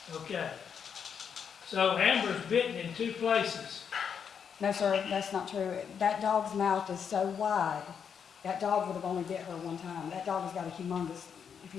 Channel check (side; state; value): right; quieter; 7.2 dB